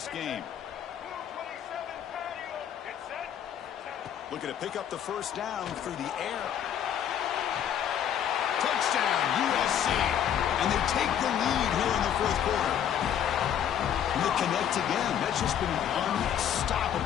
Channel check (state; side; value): quieter; right; 9.5 dB